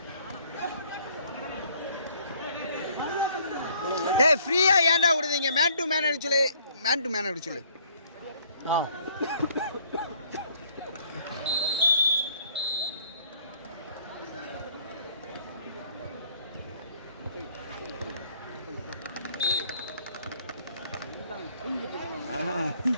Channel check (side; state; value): both; inverted; correlation -0.61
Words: ஏய் ஃப்ரீயா ஏன்டா விடுதீங்க மேன் டு மேன் அடிச்சு சொல்லு